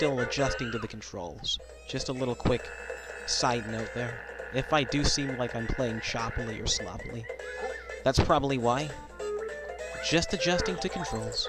adjusting to the controls. Just a little quick side note there. If I do seem like I'm playing choppily or sloppily, that's probably why. Just adjusting to controls.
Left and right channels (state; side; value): identical; both; correlation 1.00